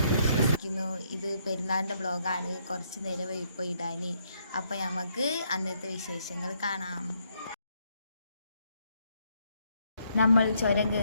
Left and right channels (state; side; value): inverted; both; correlation -0.72